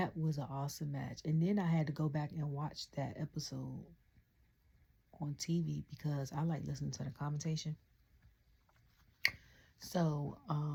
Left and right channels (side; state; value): both; identical; correlation 1.00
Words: was an awesome match. And then I had to go back and watch that episode on TV because I like listening to the commentation. So,